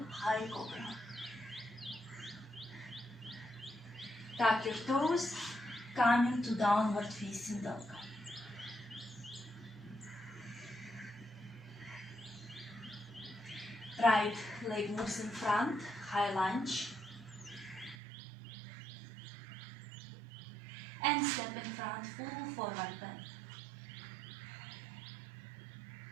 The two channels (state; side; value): drops out; left; at 17.9 s